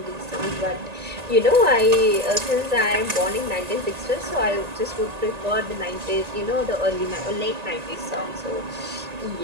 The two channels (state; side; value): late; left; 1.9 ms